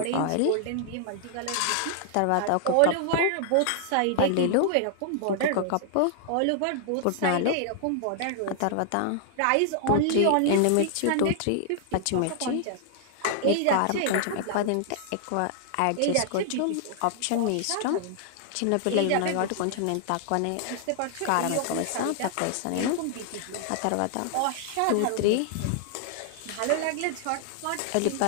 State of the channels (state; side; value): different; both; correlation -0.01